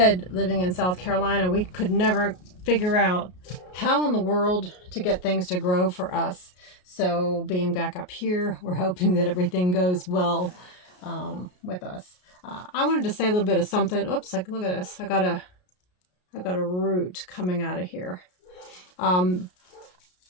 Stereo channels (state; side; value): late; right; 33 ms